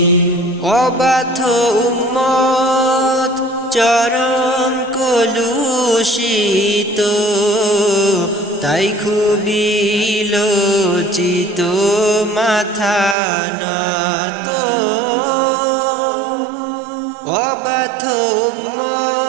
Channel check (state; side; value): drops out; left; at 13.2 s